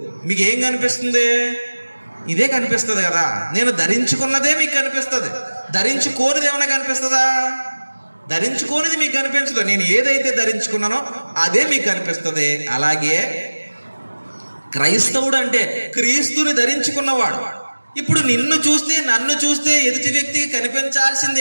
మీకు ఏం కనిపిస్తుంది, ఇదే కనిపిస్తుంది కదా. నేను ధరించుకున్నదే మీకు కనిపిస్తుంది, ధరించుకోనిది ఏమైనా కనిపిస్తుందా, ధరించుకోనిది మీకు కనిపించదు. నేను ఏదైతే ధరించుకున్నానో అదే మీకు కనిపిస్తుంది. అలాగే క్రైస్తవుడు అంటే క్రీస్తుని ధరించుకున్నవాడు. ఇప్పుడు నిన్ను చూస్తే నన్ను చూస్తే ఎదుటి వ్యక్తికి కనిపించాల్సింది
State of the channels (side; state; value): both; inverted; correlation -1.00